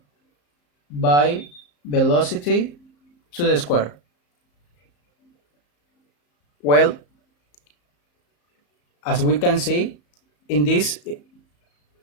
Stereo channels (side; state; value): right; late; 34 ms